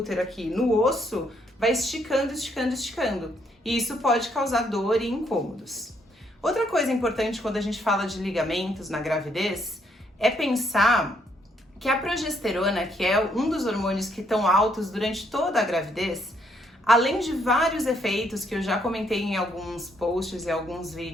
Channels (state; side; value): normal; both; correlation 0.72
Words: aqui no osso, vai esticando, esticando, esticando. E isso pode causar dor e incômodos. Outra coisa importante quando a gente fala de ligamentos na gravidez, é pensar que a progesterona, que é um dos hormônios que estão altos durante toda a gravidez, além de vários efeitos que eu já comentei em alguns posts e alguns